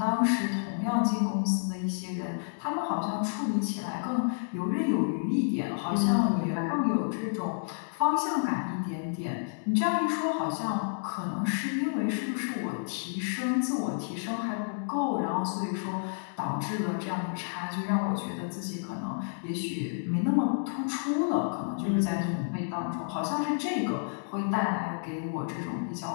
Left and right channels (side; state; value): right; silent; digital silence